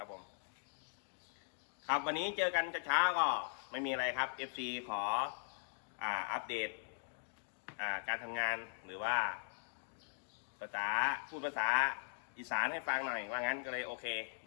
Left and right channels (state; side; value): silent; right; digital silence